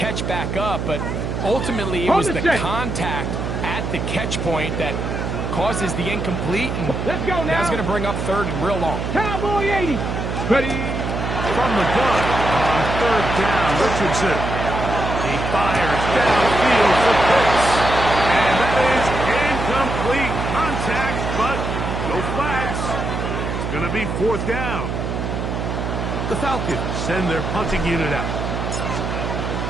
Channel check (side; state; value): right; noise; hum, 3 dB below the sound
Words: back up, but ultimately it was the contact at the catch point that causes the incomplete, and let's go now. That's going to bring up third and real long. Cowboy 80. Ready? From the gun on third down, Richardson. He fires downfield for Pitts. And that is incomplete contact, but no flags. It's going to be fourth down. The Falcons send their punting unit out.